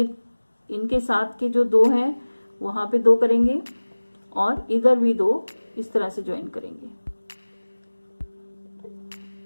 इनके साथ के जो 2 हैं वहां पे 2 करेंगे और इधर भी 2 इस तरह से ज्वाइन करेंगे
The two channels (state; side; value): inverted; both; correlation -1.00